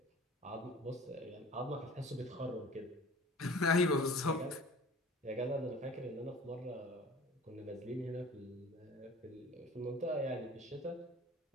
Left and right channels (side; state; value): both; normal; correlation 0.43